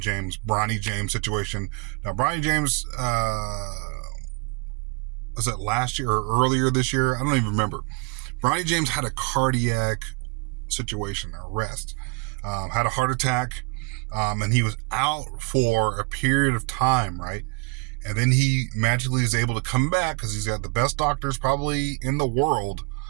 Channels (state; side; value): quieter; left; 32.9 dB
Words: James situation. Now, Bronny James, was that last year or earlier this year? I don't even remember. Bronny James had a cardiac situation, arrest, had a heart attack, and he was out for a period of time, right? And then he magically is able to come back because he's got the best doctors probably in the world.